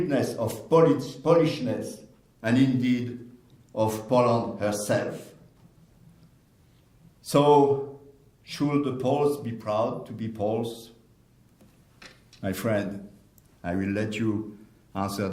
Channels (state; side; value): identical; both; correlation 1.00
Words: of Polishness and indeed of Poland herself. So, should the Poles be proud to be Poles? My friend, I will let you answer